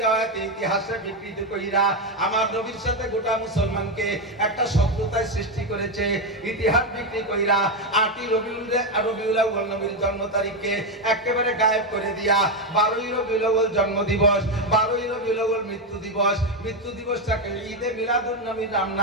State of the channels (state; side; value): normal; both; correlation 0.08